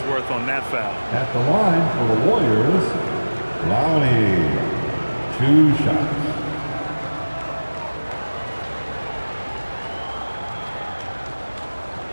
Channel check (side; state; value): both; inverted; correlation -1.00